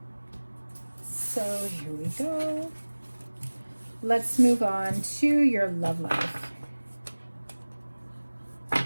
So here we go. Let's move on to your love life.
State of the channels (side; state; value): both; inverted; correlation -1.00